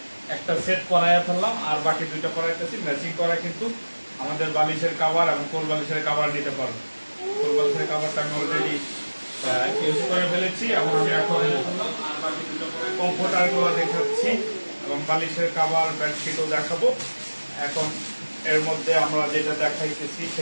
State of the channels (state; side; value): inverted; both; correlation -1.00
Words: একটা সেট করাইয়া ফেললাম, আর বাকি দুইটা করাইতেছি ম্যাচিং করা। কিন্তু আমাদের বালিশের কাভার এবং কোল বালিশের কাভার নিতে পারবেন। কোল বালিশের কাভারটা আমি অলরেডি ইউজ করে ফেলেছি, এবং আমি এখন বাকি দুটো কমফোর্টারগুলো দেখাচ্ছি এবং বালিশের কাভার, বেডশিটও দেখাবো। এখন এর মধ্যে আমরা যেটা দেখাইতেছি